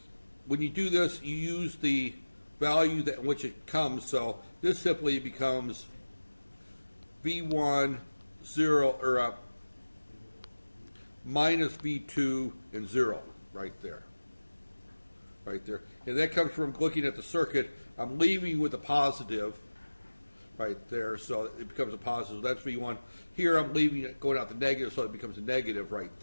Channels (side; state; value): both; inverted; correlation -1.00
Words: when you do this, you use the value that in which it comes. So this simply becomes V1 0 or minus V2 and 0 right there. Right there, and that comes from looking at the circuit. I'm leaving with a positive. Right there, so it becomes a positive. That's V1. Here I'm leaving it going out the negative, so it becomes a negative right